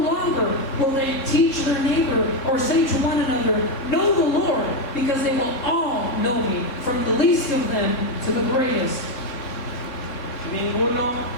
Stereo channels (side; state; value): right; late; 3.7 ms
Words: will they teach their neighbor or say to one another, know the Lord, because they will all know me, from the least of them to the greatest. Ninguno